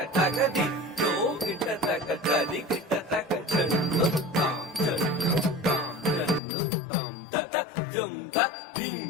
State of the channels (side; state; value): right; drops out; at 6.4 s